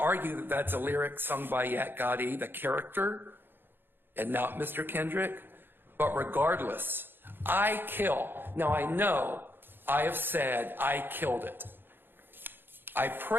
that that's a lyric sung by Yak Gotti, the character, and not Mr. Kendrick. But regardless, I kill. Now I know I have said I killed it. I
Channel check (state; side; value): late; left; 0.10 ms